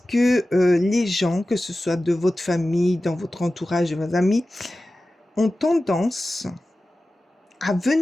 que les gens, que ce soit de votre famille, dans votre entourage, de vos amis, ont tendance à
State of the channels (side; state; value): both; normal; correlation 0.95